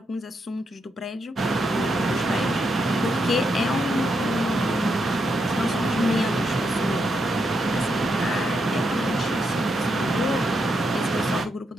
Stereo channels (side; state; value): both; normal; correlation 0.81